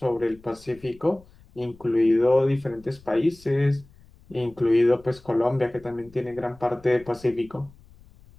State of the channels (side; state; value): left; noise; rumble, 25 dB below the sound